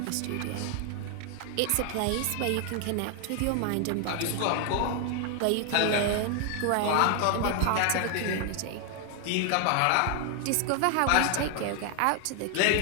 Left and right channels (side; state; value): both; different; correlation 0.00